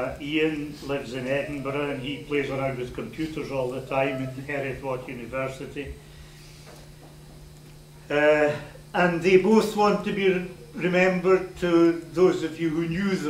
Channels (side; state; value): both; identical; correlation 1.00